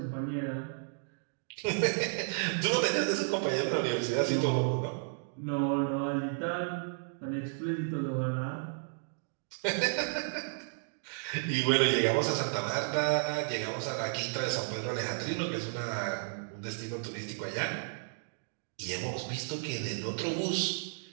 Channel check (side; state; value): left; silent; digital silence